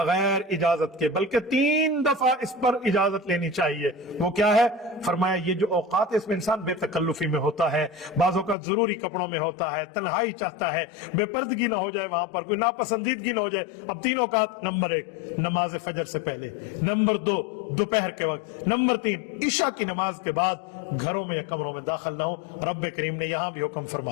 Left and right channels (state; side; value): drops out; right; at 8.6 s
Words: इजाजत के, बल्कि 3 दफा इस पर इजाजत लेनी चाहिए। वो क्या है? फरमाया ये जो औकात है इसमें इंसान बेतकल्लुफी में होता है, बाज़ों का जरूरी कपड़ों में होता है, तन्हाई चाहता है, बेपर्दगी ना हो जाए, वहां पर कोई नापसंदीदगी ना हो जाए। अब 3 औकात, नंबर 1 नमाज फजर से पहले, नंबर 2 दोपहर के वक्त, नंबर 3 इशा की नमाज के बाद घरों में या कमरों में दाखिल ना हो। रब्बे करीम ने यहां भी हुक्म